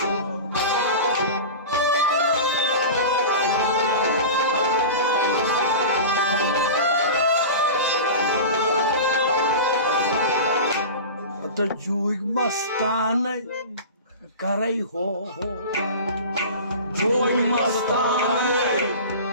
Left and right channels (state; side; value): inverted; both; correlation -0.31